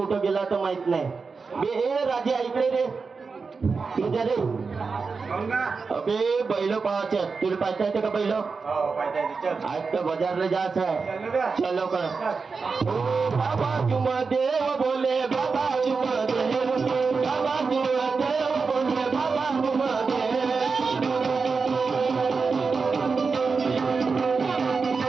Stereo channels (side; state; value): left; quieter; 4.8 dB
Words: गेला तर माहित नाही. बे राजे ऐकले रे तुझ्या रे. अबे बैल पाहायचे तुला पाहता येते का बैल? आज तर बाजारला जायचं आहे. चल लवकर. बाबा तुम देव बोले बाबा तुम देव बाबा तुम देव बोले बाबा तुम